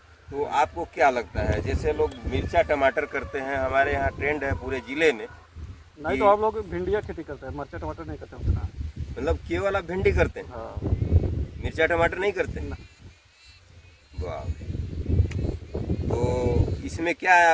तो आपको क्या लगता है? जैसे लोग मिर्चा टमाटर करते हैं, हमारे यहाँ ट्रेंड है पूरे ज़िले में। नहीं तो हम लोग भिंडिया खेती करते हैं, मिर्चा टमाटर नहीं करते उतना। मतलब केवल आप भिंडी करते हैं, हाँ, मिर्चा टमाटर नहीं करते? ना। वाह। तो इसमें क्या है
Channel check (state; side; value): identical; both; correlation 1.00